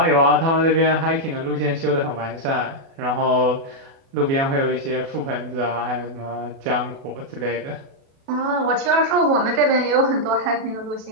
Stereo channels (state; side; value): late; left; 37 ms